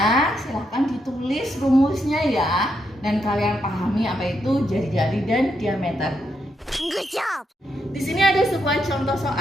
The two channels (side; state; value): both; normal; correlation 0.80